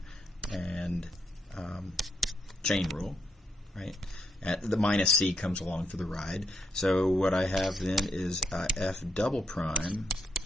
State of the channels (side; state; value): both; normal; correlation 0.78